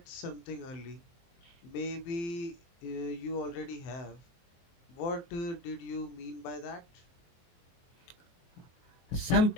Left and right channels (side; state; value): right; late; 23 ms